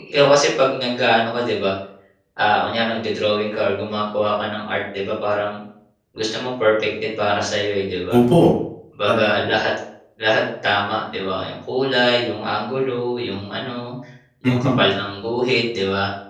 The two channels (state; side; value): identical; both; correlation 1.00